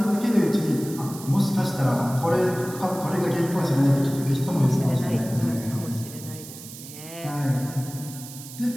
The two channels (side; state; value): right; noise; hiss, 14 dB below the sound